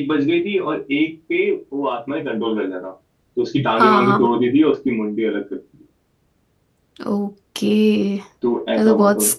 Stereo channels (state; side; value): identical; both; correlation 1.00